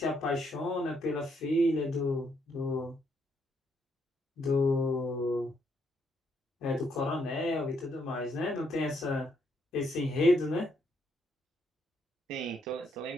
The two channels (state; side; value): normal; both; correlation 0.74